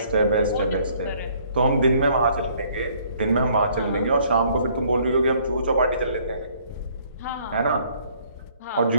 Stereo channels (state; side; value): inverted; both; correlation -0.62